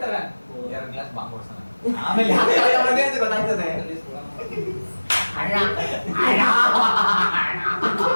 2 ಗ್ಲಾಸ್ ಬಾಂಬ್ ಹೊಡ್ಸೋಣ. ಆಮೇಲೆ ಯಾಕೆ ಕರ್ಕೊಂಡ್ ಬಂದೆ ಅಂತ ಗೊತ್ತಾಗ್ತದೆ.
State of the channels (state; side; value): inverted; both; correlation -1.00